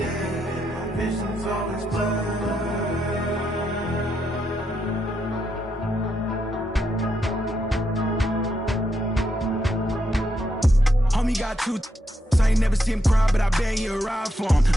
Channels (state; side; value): normal; both; correlation 0.80